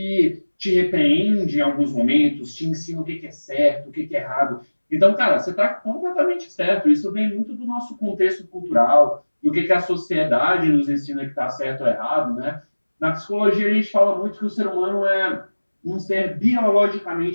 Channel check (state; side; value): inverted; both; correlation -1.00